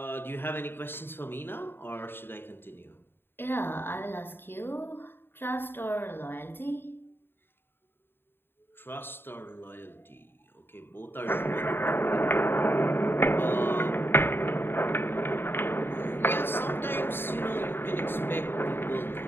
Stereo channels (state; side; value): late; right; 0.10 ms